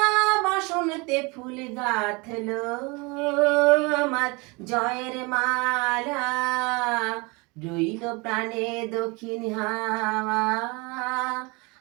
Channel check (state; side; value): quieter; left; 27.4 dB